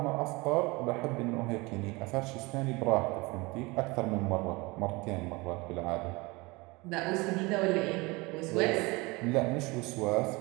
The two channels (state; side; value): quieter; left; 24.6 dB